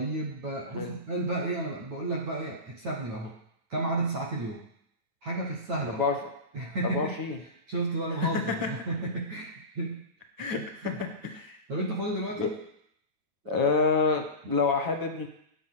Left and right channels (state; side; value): late; left; 9.2 ms